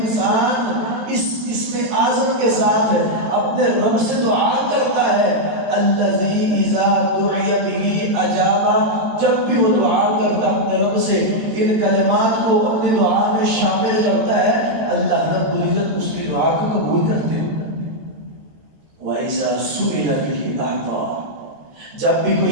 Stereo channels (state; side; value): late; left; 13 ms